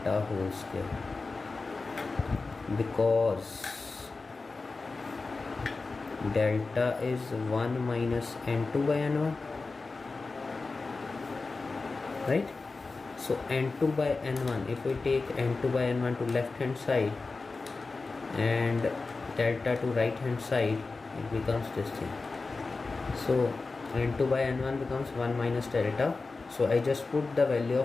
whole square, because delta is 1 minus n2 by n1, right? So n2 by n1, if we take n2 by n1 to left hand side and delta to right hand side, it becomes this thing. So n2 by n1 becomes 1 minus delta. So I just put the value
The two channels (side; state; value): right; quieter; 3.9 dB